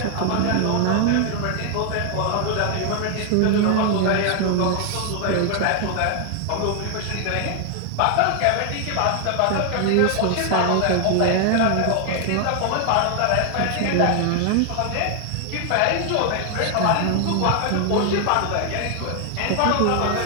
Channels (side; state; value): both; different; correlation 0.00